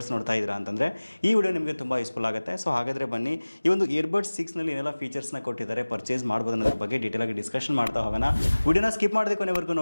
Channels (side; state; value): both; inverted; correlation -1.00